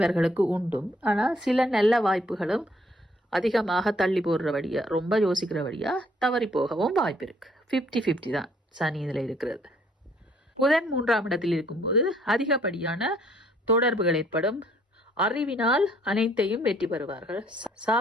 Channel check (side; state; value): both; normal; correlation 0.64